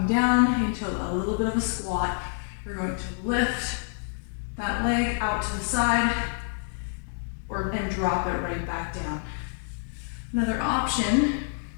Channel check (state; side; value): silent; right; 60 dB below the other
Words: down into a little bit of a squat. You're going to lift that leg out to the side and drop it right back down. Another option,